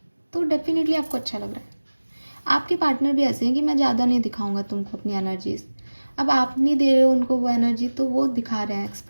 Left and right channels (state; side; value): inverted; both; correlation -1.00